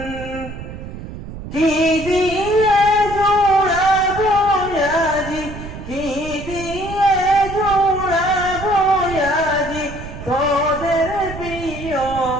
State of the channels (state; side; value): noise; right; rumble, 11 dB below the sound